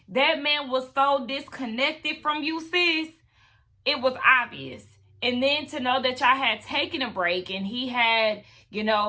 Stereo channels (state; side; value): identical; both; correlation 1.00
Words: That man was so disconnected from you, sis. It was obvious. And then to know that y'all had taken a break and he had,